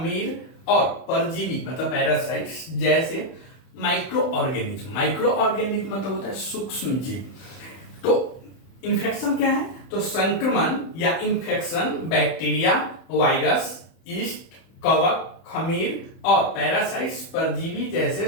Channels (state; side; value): late; right; 31 ms